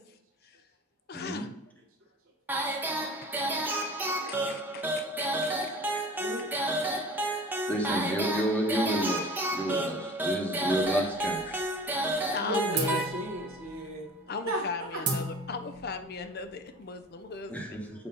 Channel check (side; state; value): both; normal; correlation 0.41